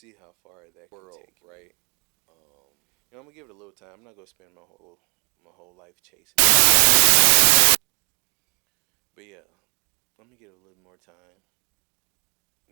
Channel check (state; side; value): quieter; left; 31.0 dB